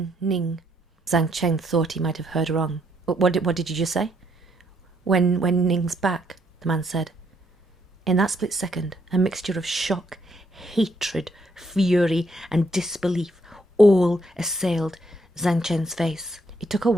Yīng. Jiāng Chéng thought he might have heard wrong. What did you just say?" Wèi Yīng's back," the man said. In that split second, a mixture of shock, hatred, fury, and disbelief all assailed Jiāng Chéng's face. It took a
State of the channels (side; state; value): both; normal; correlation 0.72